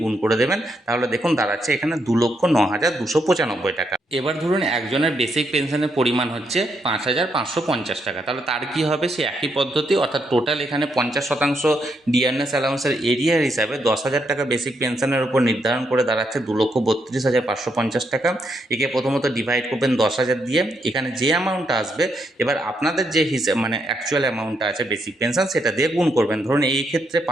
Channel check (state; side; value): normal; both; correlation 0.78